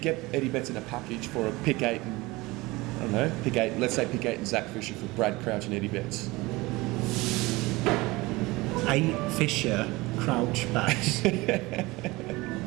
Eddie Betts in a package for a pick 8 and, I don't know, pick 8, let's say pick 8 and Zach Fisher for Brad Crouch and Eddie Betts? 8 Fisher, Crouch, Betts. How would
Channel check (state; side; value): quieter; left; 21.8 dB